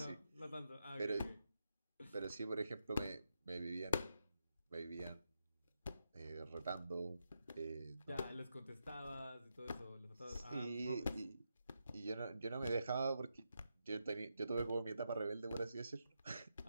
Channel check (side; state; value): both; inverted; correlation -0.85